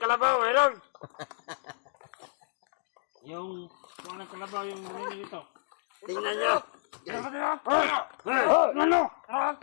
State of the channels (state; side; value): silent; right; digital silence